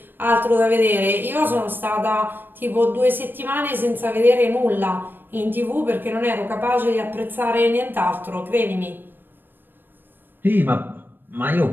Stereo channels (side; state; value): left; late; 0.094 ms